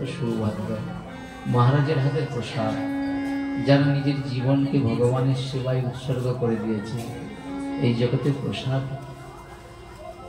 সৌভাগ্য। মহারাজের হাতের প্রসাদ, যারা নিজের জীবনকে ভগবানের সেবায় উৎসর্গ করে দিয়েছে। এই জগতে প্রসাদ,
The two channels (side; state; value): both; identical; correlation 1.00